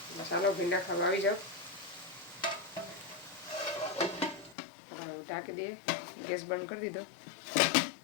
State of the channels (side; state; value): right; drops out; at 4.5 s